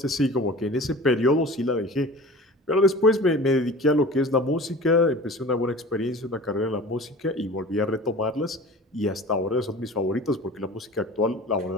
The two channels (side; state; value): both; normal; correlation 0.39